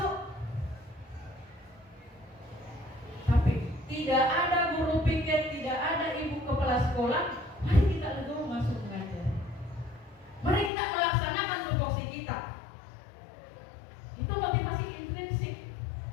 Tapi tidak ada guru pikir, tidak ada ibu kepala sekolah. Mari kita legowo masuk mengajar. Mari kita melaksanakan tupoksi kita. Itu motivasi intrinsik.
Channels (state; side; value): drops out; right; at 10.7 s